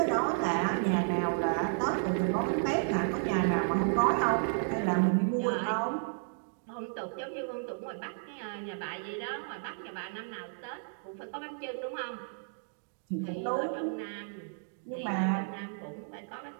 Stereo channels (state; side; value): silent; left; digital silence